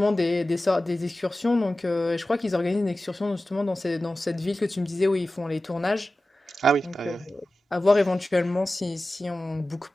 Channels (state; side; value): normal; both; correlation 0.95